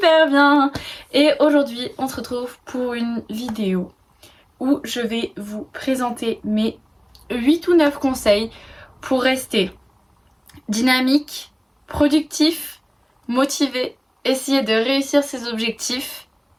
bien. Et aujourd'hui on se retrouve pour une vidéo où je vais vous présenter mes 8 ou 9 conseils pour rester dynamique, productif, motivé, essayer de réussir ses objectifs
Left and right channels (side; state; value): both; identical; correlation 1.00